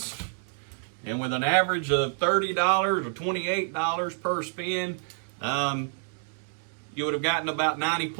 and with an average of $30 or $28 per spin, you would have gotten about 90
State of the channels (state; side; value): silent; left; digital silence